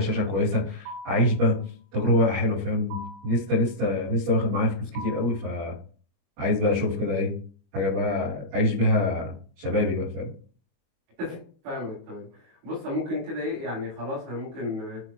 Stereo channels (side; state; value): left; late; 25 ms